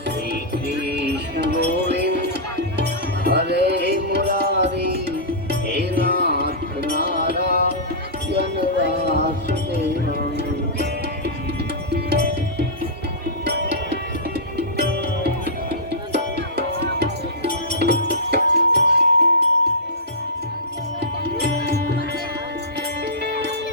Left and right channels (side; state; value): both; normal; correlation -0.15